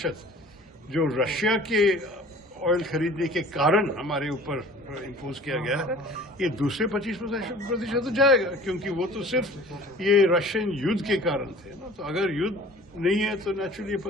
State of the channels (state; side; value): normal; both; correlation 0.46